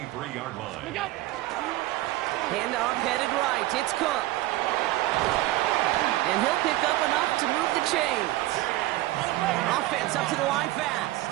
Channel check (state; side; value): quieter; left; 17.4 dB